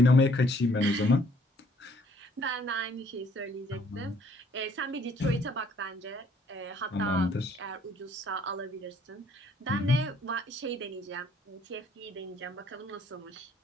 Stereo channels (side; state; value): both; normal; correlation 0.61